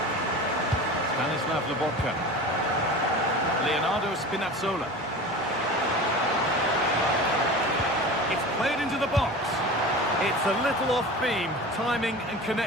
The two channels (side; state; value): both; normal; correlation 0.34